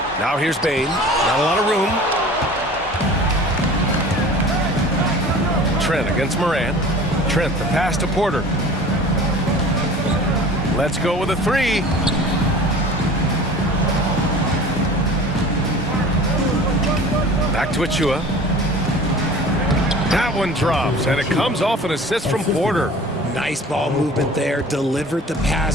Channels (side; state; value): both; normal; correlation 0.43